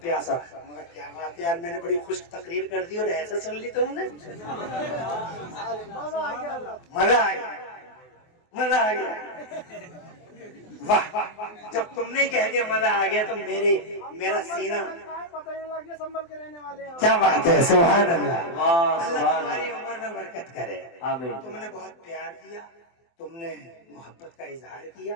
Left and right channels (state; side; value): late; right; 24 ms